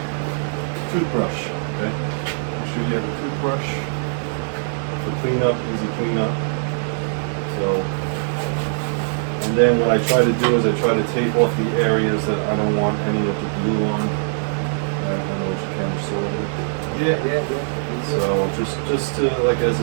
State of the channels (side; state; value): left; silent; digital silence